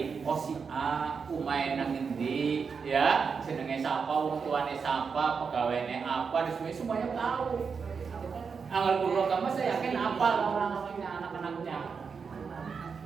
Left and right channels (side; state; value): left; quieter; 5.7 dB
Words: oh si A umain nang endi ya, jenenge sapa, wong tuane sapa, pegawainya apa, semuanya tahu. Anggal kulo kamu saya yakin apal orang-orangnya, anak-anaknya.